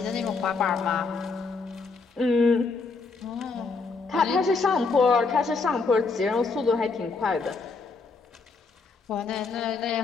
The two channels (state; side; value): quieter; right; 4.3 dB